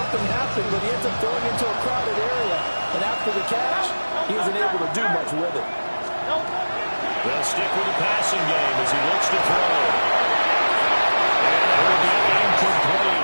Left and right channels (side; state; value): both; inverted; correlation -1.00